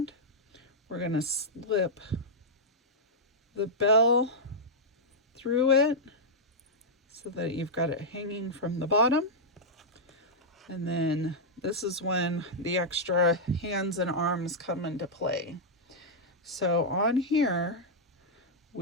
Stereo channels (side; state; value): both; normal; correlation -0.07